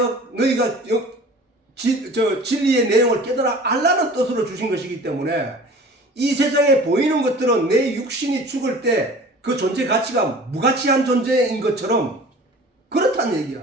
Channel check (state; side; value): normal; both; correlation 0.43